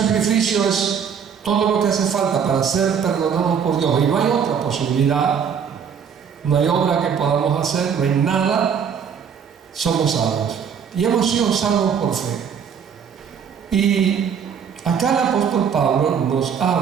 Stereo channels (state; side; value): quieter; left; 7.2 dB